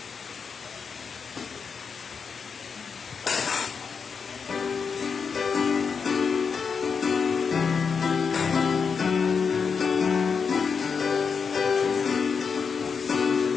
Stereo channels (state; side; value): quieter; right; 5.8 dB